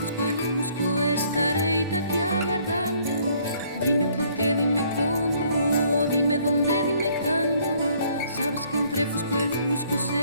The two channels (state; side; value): inverted; both; correlation -0.62